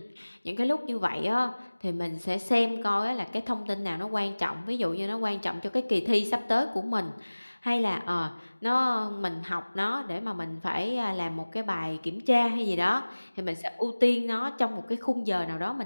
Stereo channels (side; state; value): both; inverted; correlation -1.00